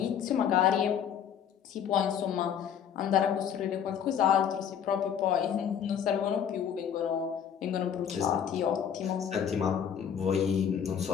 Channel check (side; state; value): right; quieter; 8.4 dB